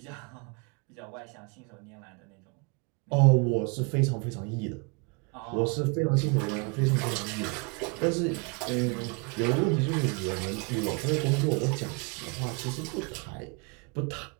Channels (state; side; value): quieter; left; 32.7 dB